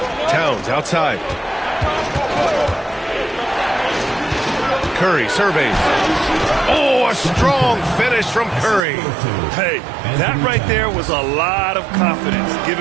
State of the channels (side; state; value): left; drops out; at 8.8 s